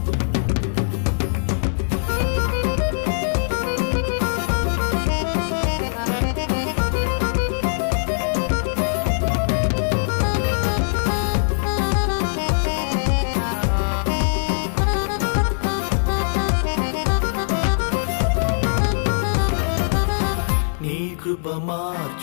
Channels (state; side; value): silent; right; digital silence